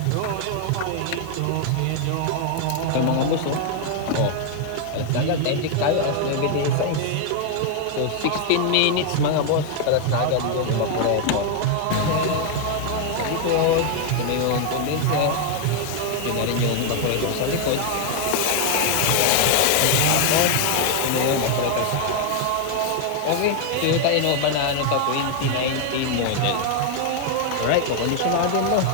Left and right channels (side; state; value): both; different; correlation 0.00